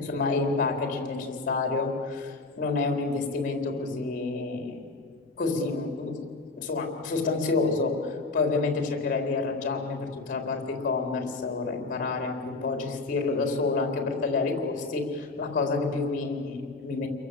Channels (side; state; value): right; quieter; 3.4 dB